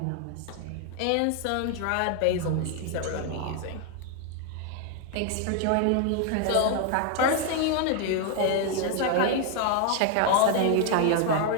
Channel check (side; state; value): both; different; correlation 0.00